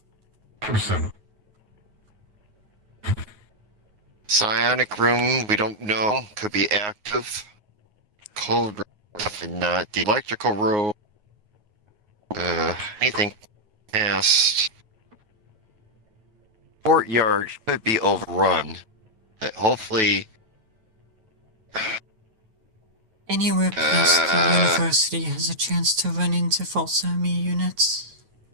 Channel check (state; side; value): late; left; 9.4 ms